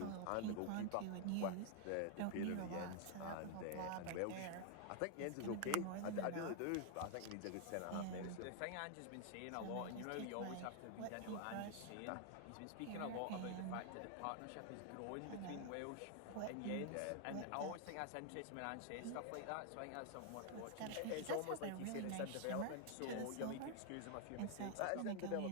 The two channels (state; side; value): different; both; correlation 0.00